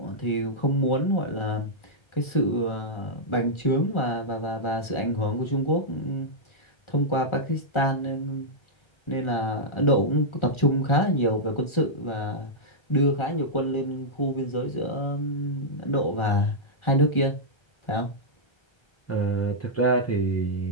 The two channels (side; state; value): right; late; 1.4 ms